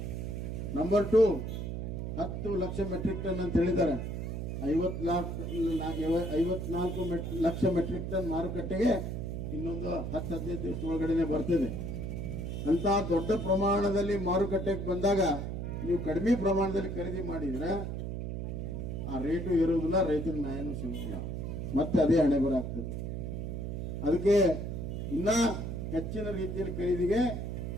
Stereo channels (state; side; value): noise; right; hum, 4 dB below the sound